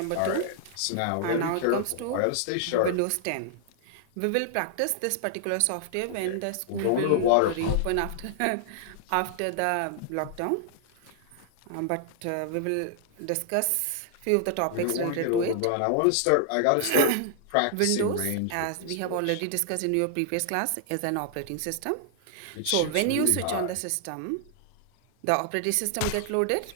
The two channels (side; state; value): both; different; correlation -0.01